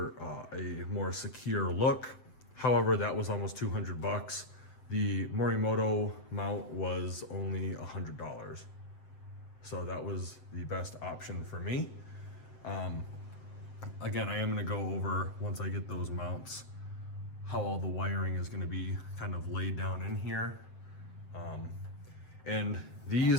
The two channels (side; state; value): right; late; 7.8 ms